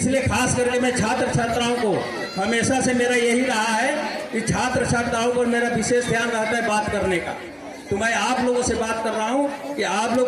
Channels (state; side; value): identical; both; correlation 1.00